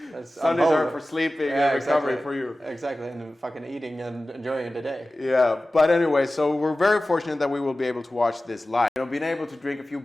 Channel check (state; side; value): normal; both; correlation 0.96